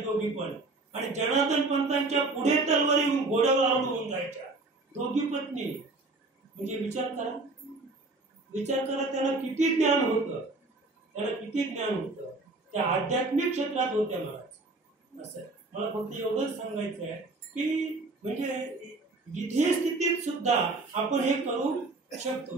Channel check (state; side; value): quieter; left; 3.3 dB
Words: पण. आणि जनार्दन पंतांच्या पुढे तलवारी येऊन घोड्यावर आरडून जायच्या दोघी पत्नी. म्हणजे विचार करा त्याला किती ज्ञान होतं, त्या आध्यात्मिक क्षेत्रात होत्या महाराज. असं मला फक्त एवढंच सांगायचं आहे की म्हणजे विधेय स्थितीत सुद्धा आपण हे करू शकतो.